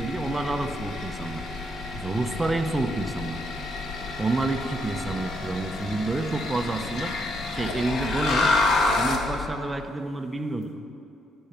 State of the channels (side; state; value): both; normal; correlation 0.75